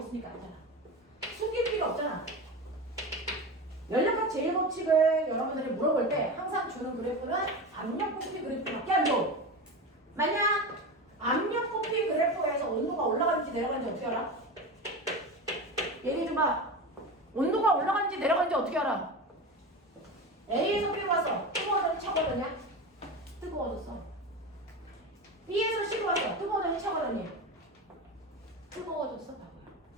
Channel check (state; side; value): normal; both; correlation 0.25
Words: 알잖아. 숨길 필요 없잖아. 연력학 제1법칙을 여러분들이 물어볼 때 항상 주는 그래프는 압력 부피 그래프밖에 안 줘. 만약 압력 부피 그래프에서 온도가 올라가는지 내려가는지 어떻게 알아? 얘기해 줘봐. 온도가 올라가는지 내려가는지 어떻게 알아? A에서 B로 와서 뜨거워졌니 차가워졌냐? 뜨거워졌어. B에서 C로 와서 뜨거워졌니 차가워졌니? 뜨거워졌어.